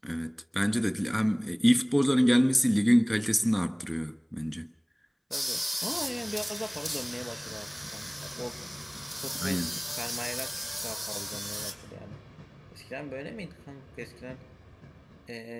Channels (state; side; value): identical; both; correlation 1.00